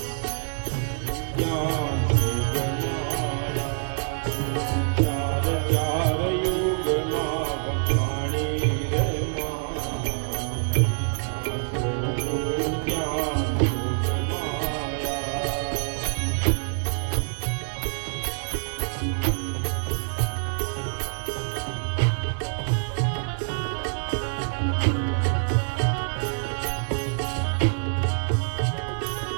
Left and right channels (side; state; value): left; silent; digital silence